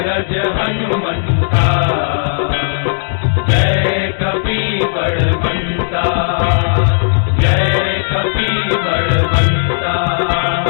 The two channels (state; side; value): silent; right; digital silence